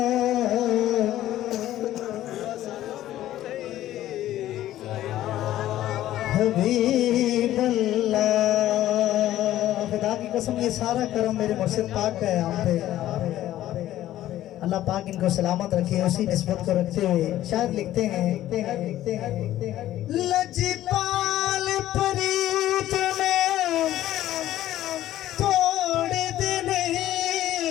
हबीब अल्लाह। खुदा की कसम ये सारा करम मेरे मुर्शिद पाक का है हम पे। अल्लाह पाक इनको सलामत रखे, उसी निस्बत को रखते हुए शायद लिखते हैं लजपाल प्रीत में तोड़ देने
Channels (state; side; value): quieter; right; 13.6 dB